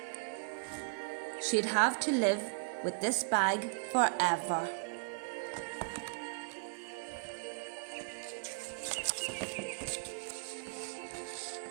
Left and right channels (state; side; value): quieter; left; 35.8 dB